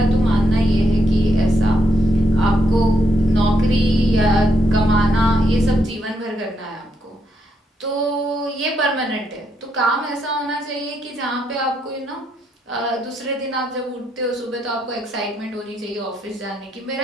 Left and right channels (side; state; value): both; normal; correlation 0.78